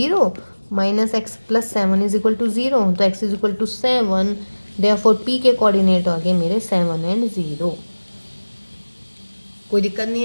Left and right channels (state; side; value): inverted; both; correlation -1.00